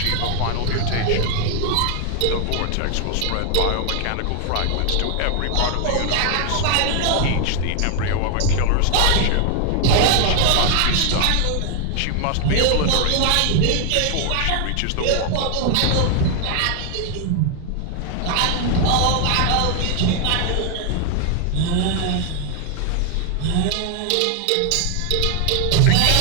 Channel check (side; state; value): both; different; correlation 0.00